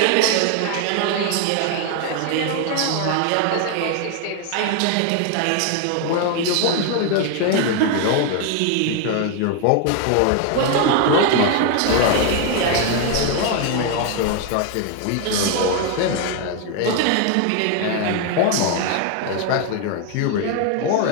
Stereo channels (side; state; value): both; different; correlation 0.01